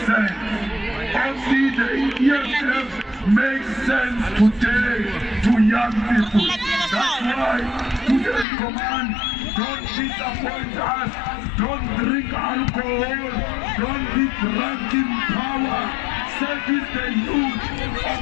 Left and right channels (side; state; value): right; drops out; at 8.5 s